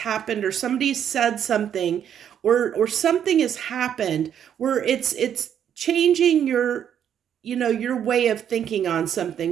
or somebody said something or something has happened where it's changing your way of thinking on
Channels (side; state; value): left; quieter; 9.2 dB